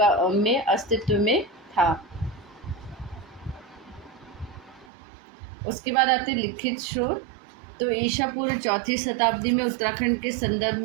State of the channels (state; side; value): drops out; left; at 4.9 s